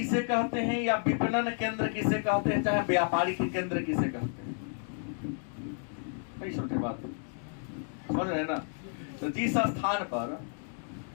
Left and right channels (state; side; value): silent; right; 57 dB below the other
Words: कहते हैं या विपणन केंद्र किसे कहते हैं, चाहे व्यापारिक केंद्र किसे कहते हैं, नहीं समझे बात, समझ रहे हैं ना। तो जिस स्थान पर